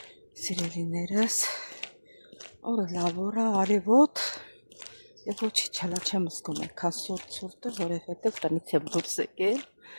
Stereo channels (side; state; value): both; inverted; correlation -1.00